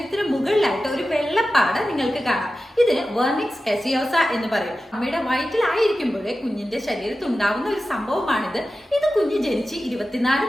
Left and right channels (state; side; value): normal; both; correlation 0.94